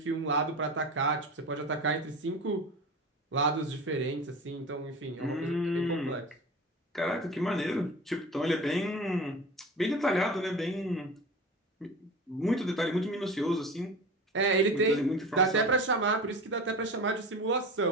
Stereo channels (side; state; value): both; normal; correlation 0.33